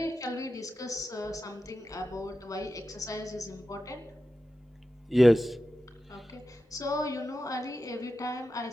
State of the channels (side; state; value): both; normal; correlation 0.92